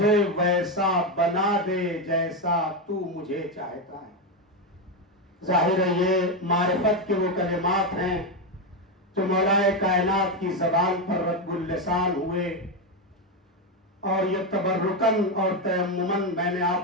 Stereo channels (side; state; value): both; normal; correlation 0.09